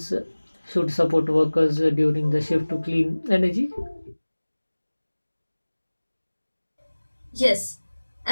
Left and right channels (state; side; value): inverted; both; correlation -1.00